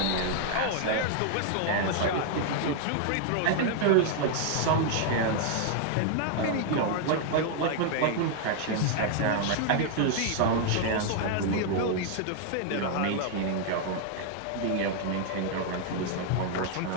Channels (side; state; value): both; different; correlation 0.00